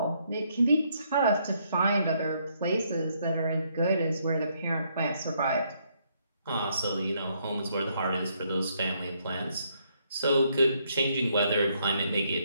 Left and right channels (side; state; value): both; inverted; correlation -0.72